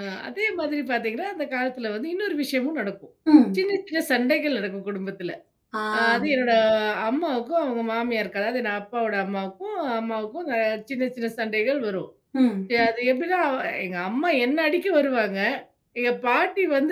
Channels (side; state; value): both; identical; correlation 1.00